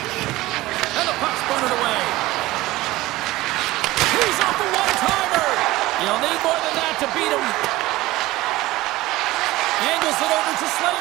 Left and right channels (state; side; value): quieter; left; 18.1 dB